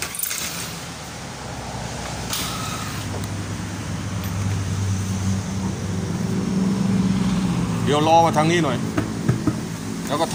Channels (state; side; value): identical; both; correlation 1.00